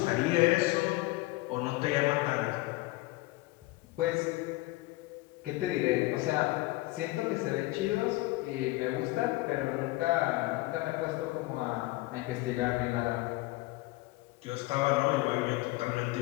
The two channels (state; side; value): quieter; right; 20.6 dB